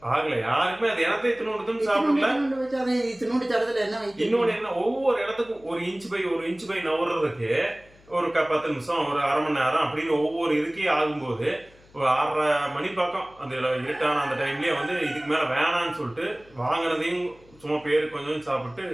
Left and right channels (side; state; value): left; noise; hum, 27 dB below the sound